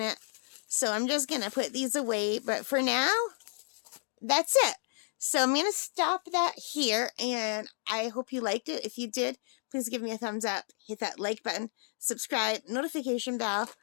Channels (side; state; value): right; silent; digital silence